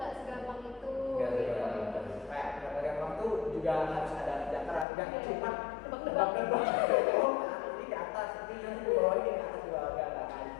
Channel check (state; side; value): drops out; right; at 4.9 s